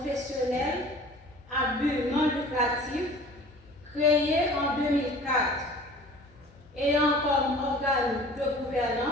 à but non lucratif créée en 2004, ayant comme organe de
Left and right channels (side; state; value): left; noise; hum, 28 dB below the sound